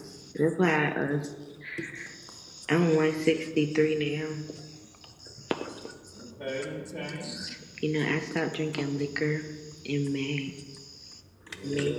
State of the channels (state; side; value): identical; both; correlation 1.00